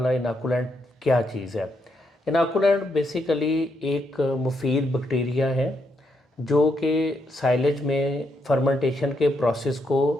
इनाकुलेंट क्या चीज़ है। इनाकुलेंट बेसिकली एक मुफीद बैक्टीरिया है जो कि साइलेज में फर्मेंटेशन के प्रोसेस को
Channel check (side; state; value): both; normal; correlation 0.78